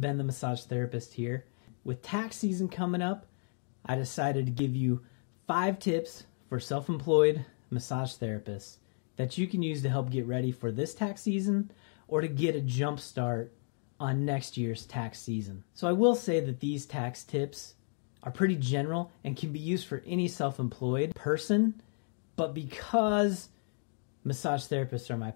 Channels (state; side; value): silent; right; 56 dB below the other